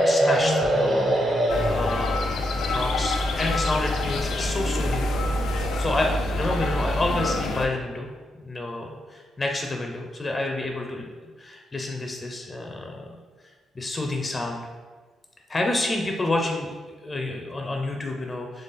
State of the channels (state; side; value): normal; both; correlation 0.83